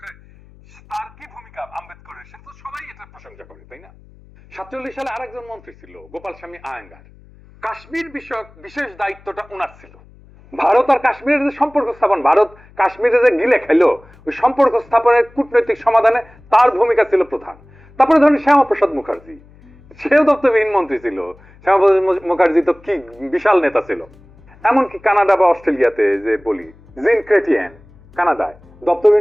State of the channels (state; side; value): noise; left; hum, 26 dB below the sound